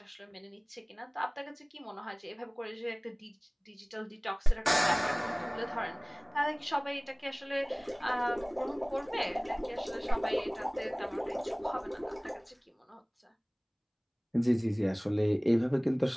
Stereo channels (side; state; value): both; identical; correlation 1.00